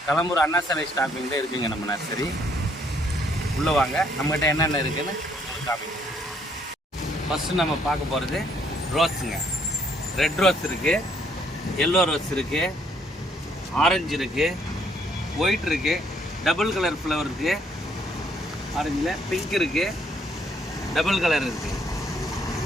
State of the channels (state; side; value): normal; both; correlation 0.68